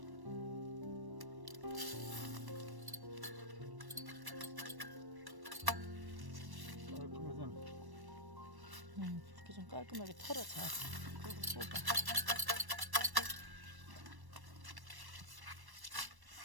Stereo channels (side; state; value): left; late; 1.1 ms